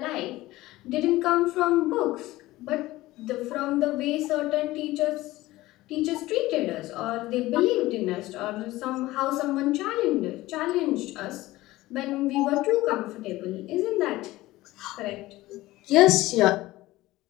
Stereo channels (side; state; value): right; quieter; 17.8 dB